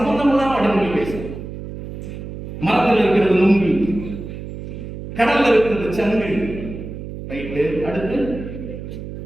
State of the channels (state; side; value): noise; right; hum, 10 dB below the sound